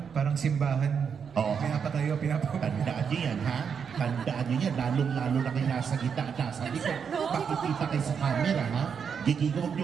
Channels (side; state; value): left; quieter; 6.8 dB